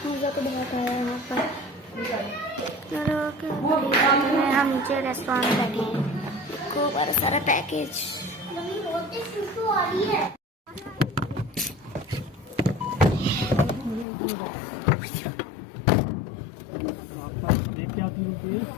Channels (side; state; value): right; drops out; at 14.1 s